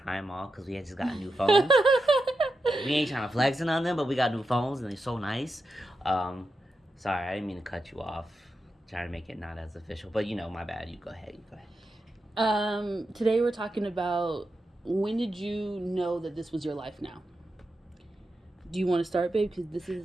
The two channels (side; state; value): both; normal; correlation 0.88